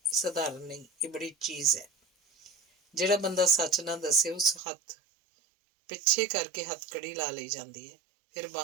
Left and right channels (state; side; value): drops out; left; at 4.6 s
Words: ਸਧਾਰਨ ਨਹੀਂ, ਇਹ ਬੜੀ ਚੀਜ਼ ਹੈ। ਜਿਹੜਾ ਬੰਦਾ ਸੱਚ ਨਾ ਦੱਸੇ ਉਸ ਹੱਥ ਪਿੱਛੇ ਕਰਕੇ ਹੱਥਕੜੀ ਲਾ ਲਈ ਜਾਂਦੀ ਹੈ। ਫਿਰ